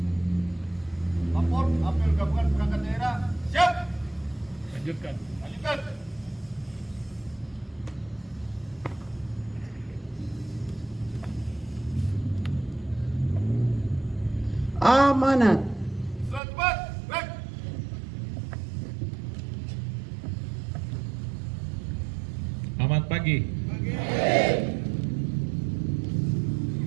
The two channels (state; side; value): drops out; left; at 16.4 s